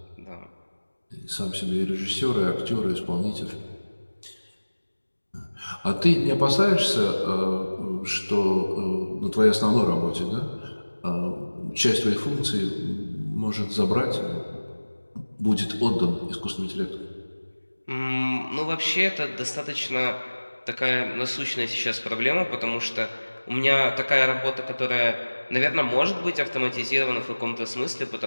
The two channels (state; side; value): inverted; both; correlation -1.00